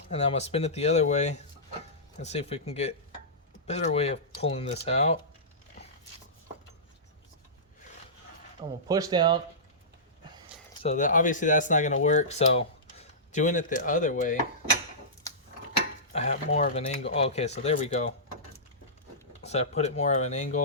and I'm gonna spin it the other way and see if we can get a better way of pulling this out. I'm gonna push down. So that obviously that's not gonna work. So doing it the other way, I have more of an angle. Okay, so there we go. So I put it more of an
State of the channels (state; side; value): normal; both; correlation -0.20